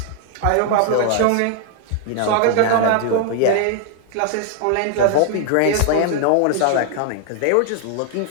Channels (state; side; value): different; both; correlation 0.00